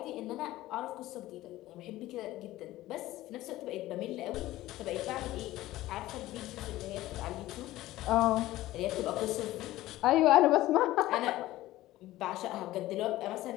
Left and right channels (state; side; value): quieter; right; 16.2 dB